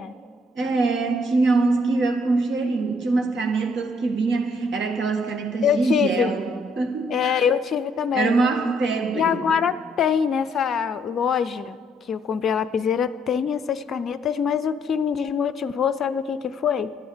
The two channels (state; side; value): normal; both; correlation 0.69